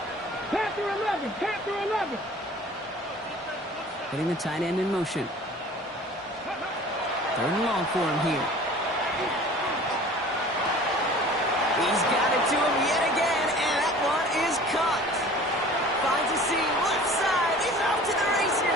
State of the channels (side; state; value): both; normal; correlation 0.45